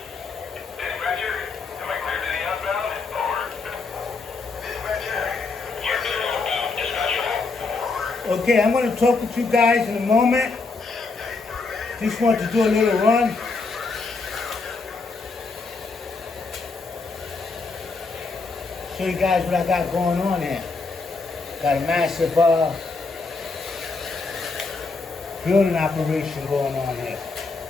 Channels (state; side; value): quieter; right; 4.1 dB